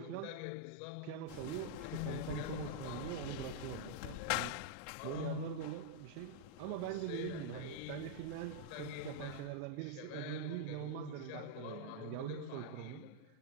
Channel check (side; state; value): both; different; correlation -0.01